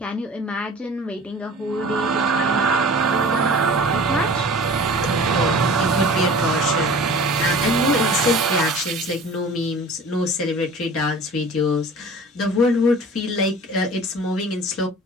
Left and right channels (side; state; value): both; normal; correlation 0.42